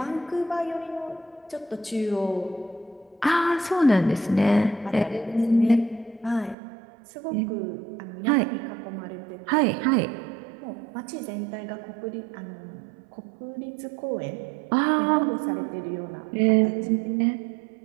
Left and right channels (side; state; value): left; drops out; at 6.6 s